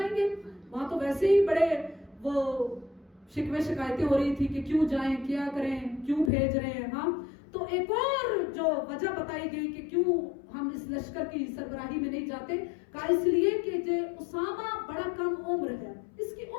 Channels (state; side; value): drops out; right; at 6.3 s